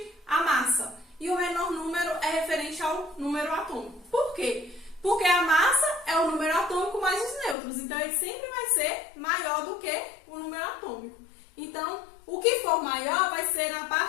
à massa e o menor número é referente ao número atômico. Por quê? Porque a massa é o número atômico mais os nêutrons, então ele sempre vai ser maior do que o número atômico. Então, o que for maior vai ser na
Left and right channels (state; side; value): drops out; right; at 7.6 s